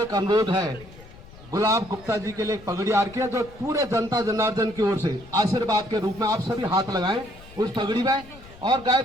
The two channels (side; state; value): left; noise; rumble, 20 dB below the sound